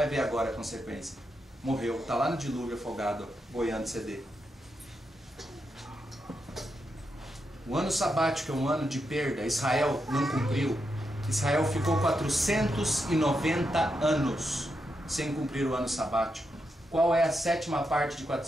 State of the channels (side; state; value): both; normal; correlation 0.84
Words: ver agora a consequência. Morreu, está lá no dilúvio afogado, boiando CD. O ano sabático é um ano de perda. Israel não cumpriu. Israel ficou 490 anos sem cumprir o ano sabático. Qual é a sétima parte de